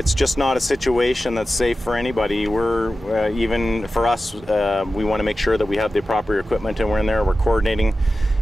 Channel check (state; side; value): normal; both; correlation 0.94